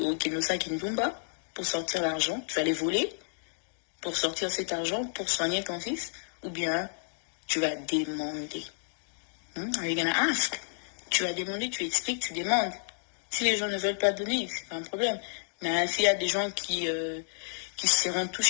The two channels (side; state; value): right; silent; digital silence